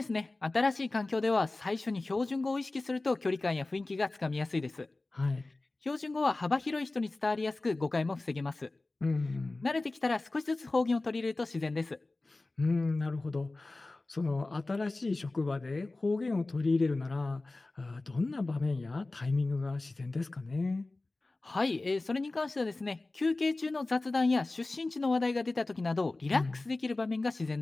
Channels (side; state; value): right; quieter; 3.1 dB